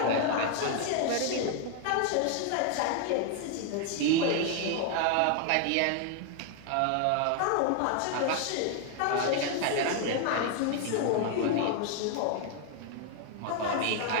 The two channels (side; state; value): both; different; correlation 0.00